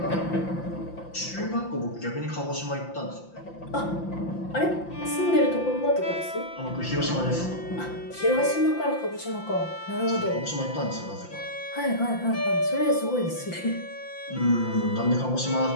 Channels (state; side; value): late; right; 5.8 ms